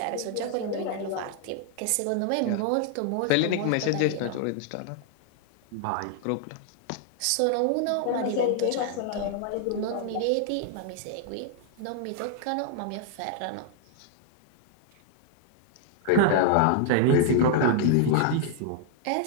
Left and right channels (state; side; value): different; both; correlation 0.00